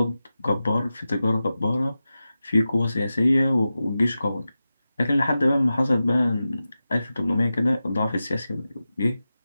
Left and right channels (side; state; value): both; inverted; correlation -0.93